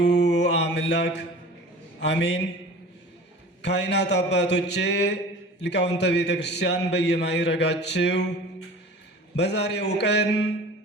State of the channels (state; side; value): normal; both; correlation 0.41